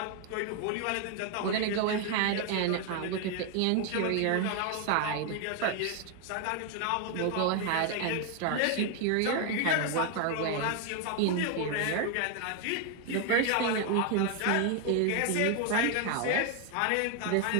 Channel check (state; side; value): different; both; correlation 0.01